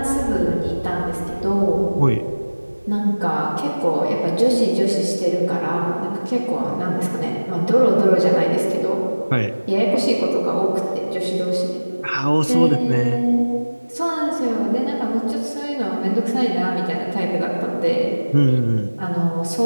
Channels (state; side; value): inverted; both; correlation -1.00